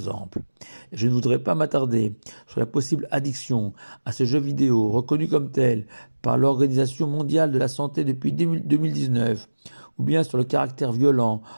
Je ne voudrais pas m'attarder sur la possible addiction à ces jeux vidéo reconnus comme tels par l'Organisation mondiale de la santé depuis 2019, ou bien sur le caractère violent,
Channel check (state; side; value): inverted; both; correlation -1.00